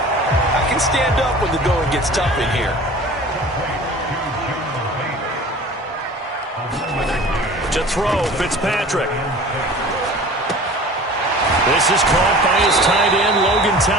I can stand up when the going gets tough in here. To throw, Fitzpatrick. This is caught by his tight end, Logan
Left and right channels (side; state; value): both; normal; correlation 0.42